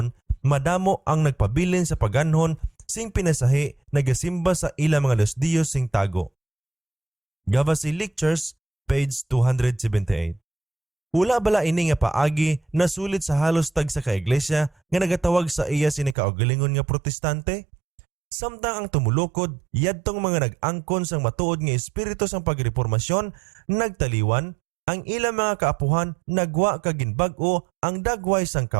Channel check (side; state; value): left; drops out; at 16.2 s